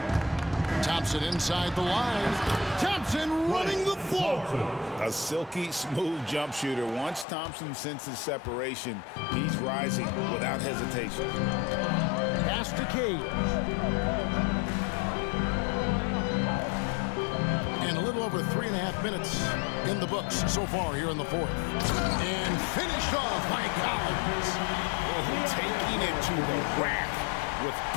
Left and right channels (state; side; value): drops out; right; at 7.2 s